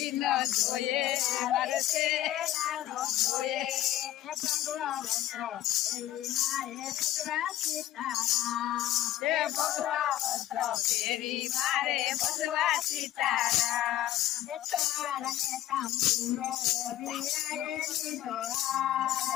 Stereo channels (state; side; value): quieter; right; 13.6 dB